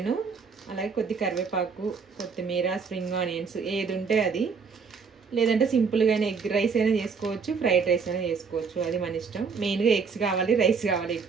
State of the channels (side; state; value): left; quieter; 5.5 dB